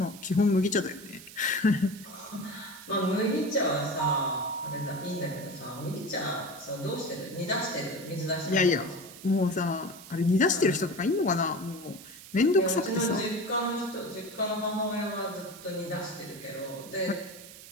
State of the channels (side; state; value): right; noise; hiss, 16 dB below the sound